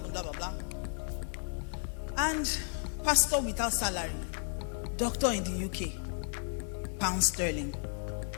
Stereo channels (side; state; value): right; silent; 55 dB below the other